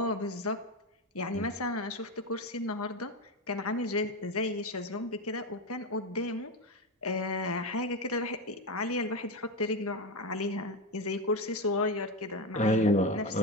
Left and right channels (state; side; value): normal; both; correlation 0.15